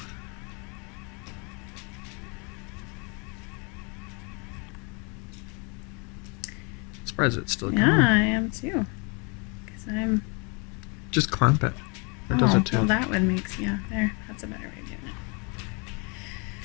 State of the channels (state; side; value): quieter; right; 32.4 dB